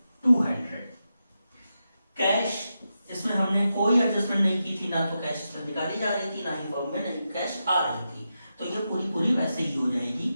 कैश, इसमें हमने कोई एडजस्टमेंट नहीं की थी, ना तो कैश इसमें निकाली जा रही थी, ना ही फॉर्म में नहीं कैश आ रही थी, तो ये पूरी वैसे ही हो जाएगी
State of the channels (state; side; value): inverted; both; correlation -0.88